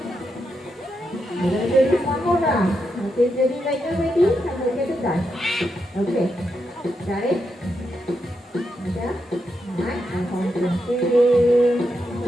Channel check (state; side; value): normal; both; correlation 0.84